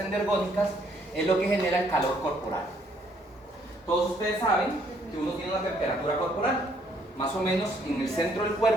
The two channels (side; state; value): both; normal; correlation 0.66